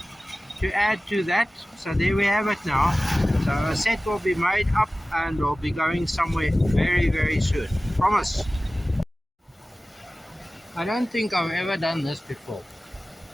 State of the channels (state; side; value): normal; both; correlation 0.97